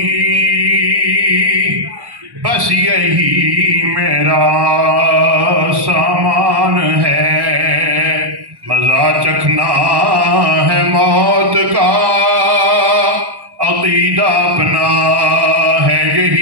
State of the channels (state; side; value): late; left; 1.1 ms